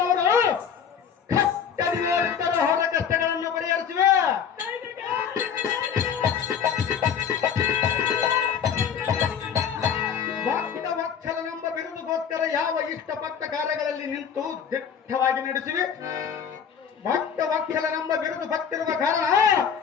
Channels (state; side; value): quieter; right; 7.5 dB